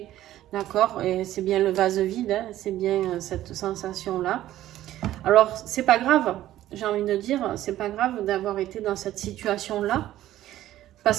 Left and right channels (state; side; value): quieter; left; 13.7 dB